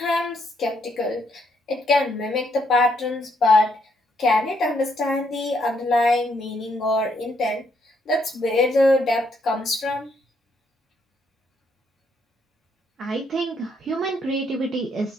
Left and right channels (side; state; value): both; normal; correlation 0.73